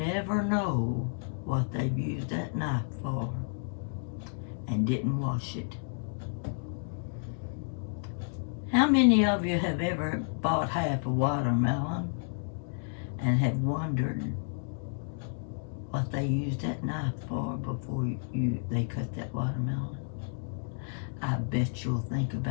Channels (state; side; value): silent; right; digital silence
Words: know what they've used that knife for and didn't wash it. How many of you have ever bought half a watermelon and have wondered what they used that knife for before they cut that watermelon? I bet you'll think